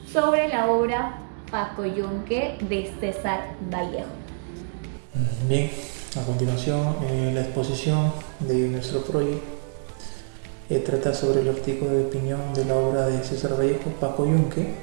sobre la obra Pacoyunque de César Vallejo. Bien, a continuación la exposición de nuestro proyecto trata sobre el artículo de opinión de la obra de César Vallejo,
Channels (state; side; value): silent; left; digital silence